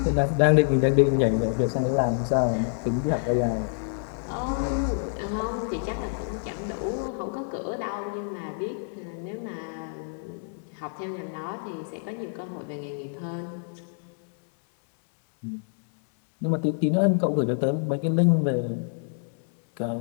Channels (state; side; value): silent; right; digital silence